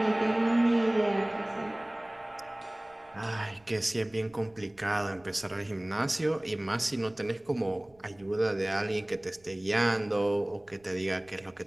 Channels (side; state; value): right; noise; rumble, 30 dB below the sound